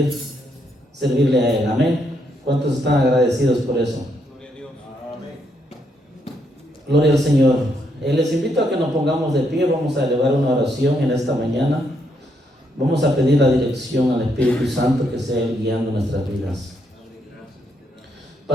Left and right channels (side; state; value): both; normal; correlation 0.76